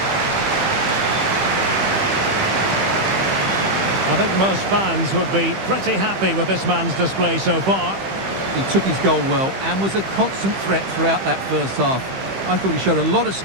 I think most fans would be pretty happy with this man's display so far. He took his goal well and was a constant threat throughout that first half. I thought he showed a lot of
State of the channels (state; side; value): late; left; 15 ms